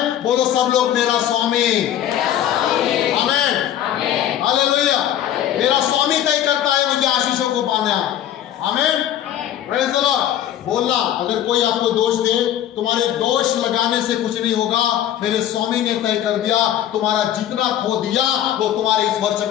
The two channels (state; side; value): quieter; right; 11.2 dB